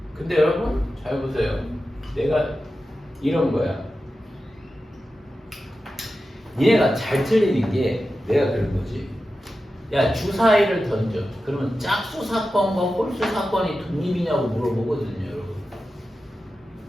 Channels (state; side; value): normal; both; correlation 0.92